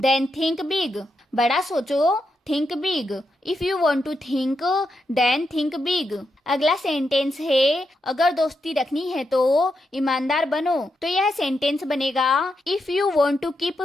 think big. बड़ा सोचो think big. If you want to think then think big. अगला सेंटेंस है अगर दोस्ती रखनी है तो ईमानदार बनो, तो यह सेंटेंस बनेगा if you want to keep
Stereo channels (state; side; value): normal; both; correlation 0.84